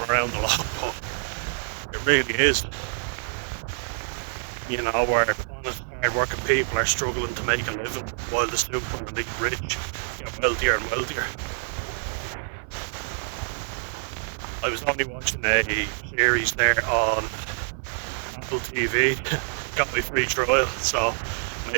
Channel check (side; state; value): left; silent; 56 dB below the other